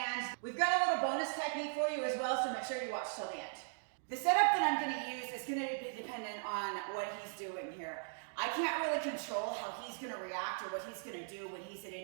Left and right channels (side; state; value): left; silent; digital silence